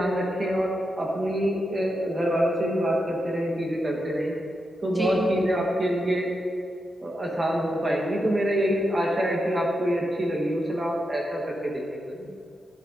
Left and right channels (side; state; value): both; normal; correlation 0.86